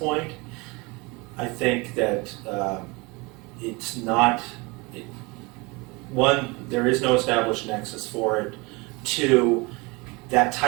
I think that it's not, one, there is no established nexus for it. Two, that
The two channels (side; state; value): left; quieter; 26.2 dB